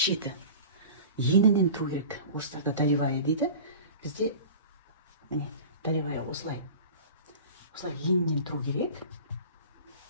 енінен тұру керек. Орыстарда долевая дейді. Бізде міне долевая осылай енінен тұру керек.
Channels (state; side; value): inverted; both; correlation -0.37